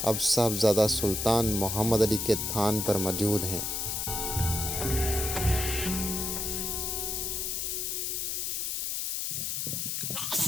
اب صاحبزادہ سلطان محمد علی کے تھان پر موجود ہیں۔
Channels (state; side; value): noise; left; hiss, 1 dB below the sound